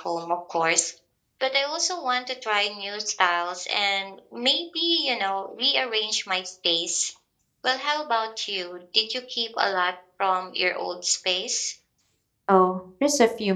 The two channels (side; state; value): both; identical; correlation 1.00